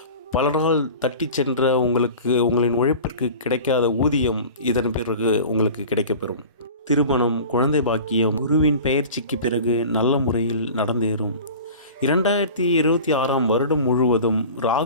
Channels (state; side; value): inverted; both; correlation -0.38